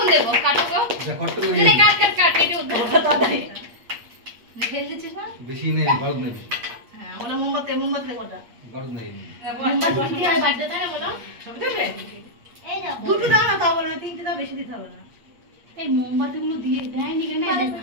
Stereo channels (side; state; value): left; late; 8.5 ms